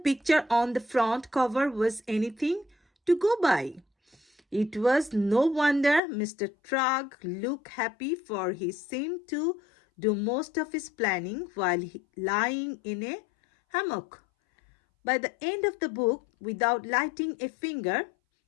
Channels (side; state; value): right; drops out; at 6.0 s